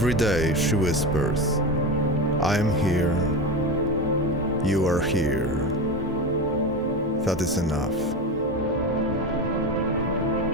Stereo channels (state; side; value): normal; both; correlation 0.21